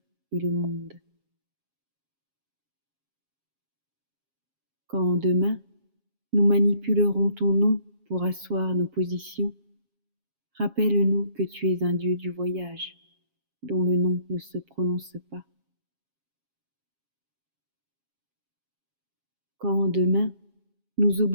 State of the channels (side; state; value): left; late; 7.4 ms